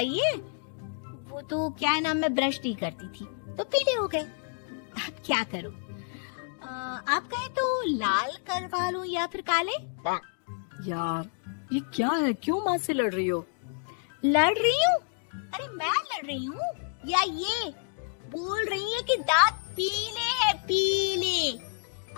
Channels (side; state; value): right; silent; 58 dB below the other